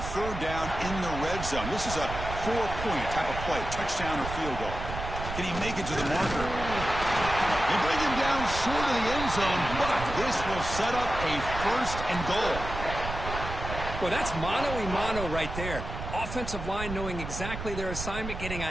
3rd down in the red zone. This is a 4-point type of play, touchdown or field goal. Can he make it to the marker? They bring him down short of the end zone, but this will set up a 1st and goal. Well, that's mano-a-mano right there. Offensive line knowing exactly their assignment, getting a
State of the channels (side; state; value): right; noise; rumble, 7 dB below the sound